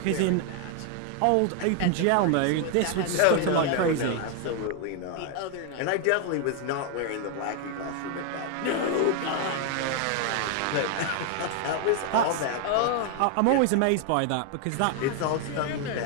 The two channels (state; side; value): different; both; correlation 0.00